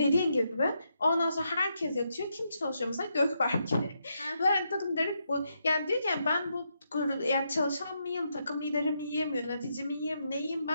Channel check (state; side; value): inverted; both; correlation -0.80